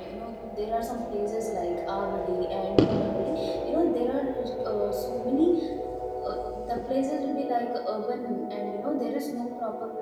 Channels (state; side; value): identical; both; correlation 1.00